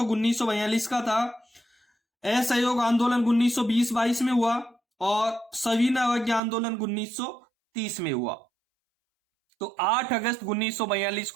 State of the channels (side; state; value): left; drops out; at 6.4 s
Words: 1942 का था, असहयोग आंदोलन 1920-22 में हुआ और सविनय अवज्ञा आंदोलन 1930 में हुआ। तो 8 अगस्त 1942